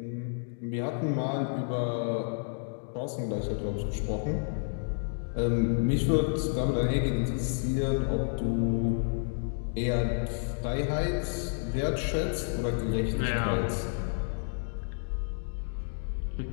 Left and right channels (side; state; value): right; silent; digital silence